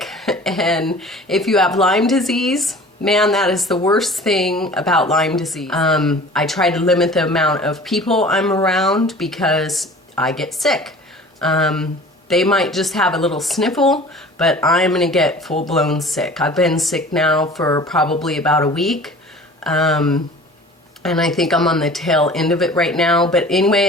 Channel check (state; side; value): normal; both; correlation 0.44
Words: And if you have Lyme disease, man, that is the worst thing about Lyme disease. I try to limit the amount of people I'm around because I get sick. They might just have a little sniffle, but I'm gonna get full-blown sick. I've been sick now for probably about a week, and I think I'm on the tail end of it right now. But anyway,